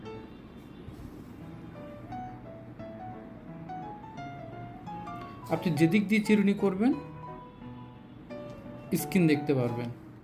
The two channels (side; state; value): both; identical; correlation 1.00